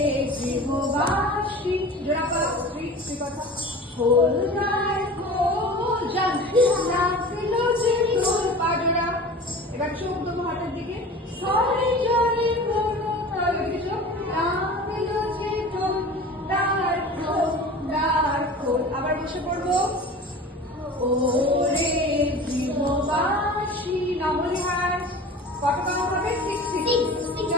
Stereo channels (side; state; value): both; normal; correlation 0.37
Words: গৃহবাসী জোড়া পাও, 3 কথা। খোল গায় খোল লাগলো যে গোল, পা জোড়া। এবার চোখ দেবো হাতের দিকে। সরে জলে কোনো তাহলে চোখ লাগলো যে গোল, তার খোল। আবার বসে পড়বো। ওরে গৃহবাসী নবলি হাত। কত কাউন্ট হবে? 6, 6।